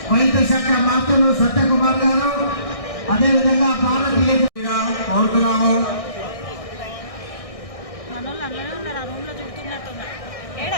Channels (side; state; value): right; late; 1.6 ms